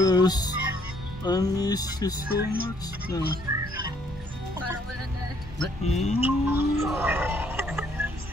I miss you so much na. Parang wala na.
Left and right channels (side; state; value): both; normal; correlation 0.66